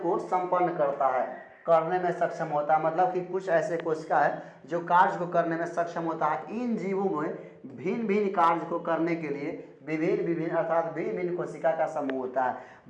संपन्न करने में सक्षम होता है। मतलब कि कुछ ऐसे कोशिका है जो कार्य को करने में सक्षम होता है। इन जीवों में भिन्न भिन्न कार्य को करने के लिए भिन्न कोशिका का समूह होता है।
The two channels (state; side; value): identical; both; correlation 1.00